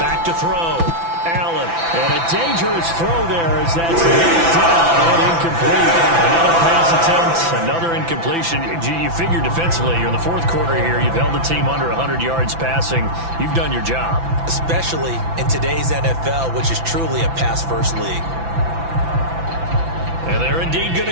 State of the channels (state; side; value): late; left; 5.9 ms